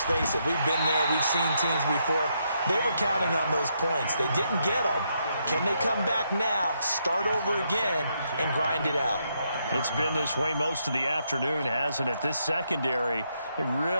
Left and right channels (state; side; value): inverted; both; correlation -0.78